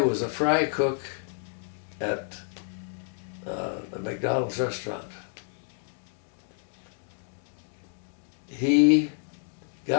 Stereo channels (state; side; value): silent; right; 58 dB below the other